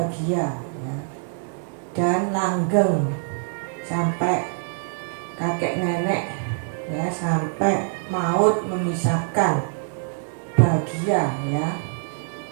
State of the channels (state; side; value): silent; left; digital silence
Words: ya, dan langgeng sampai kakek nenek, ya, sampai maut memisahkan, bahagia, ya.